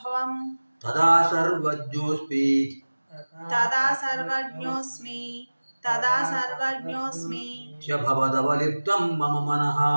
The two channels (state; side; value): inverted; both; correlation -1.00